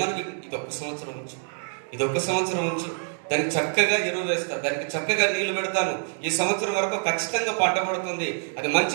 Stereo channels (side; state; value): left; silent; 61 dB below the other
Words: ఇది ఒక్క సంవత్సరం ఉంచు, ఇది ఒక్క సంవత్సరం ఉంచు, దానికి చక్కగా ఎరువు వేస్తాను, దానికి చక్కగా నీళ్లు పెడతాను, ఈ సంవత్సరం వరకు ఖచ్చితంగా పంట పడుతుంది, అది